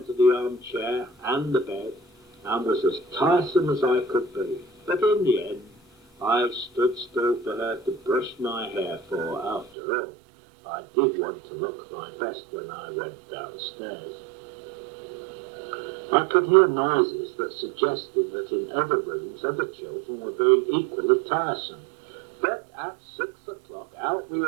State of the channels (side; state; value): left; drops out; at 9.7 s